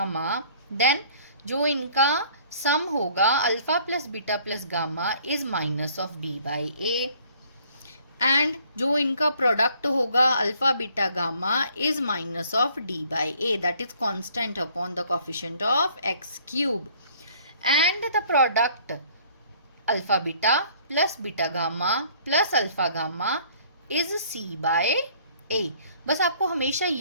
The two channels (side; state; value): both; inverted; correlation -0.57